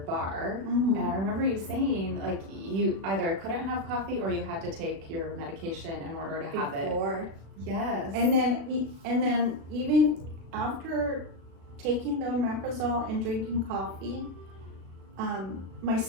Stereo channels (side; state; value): left; late; 36 ms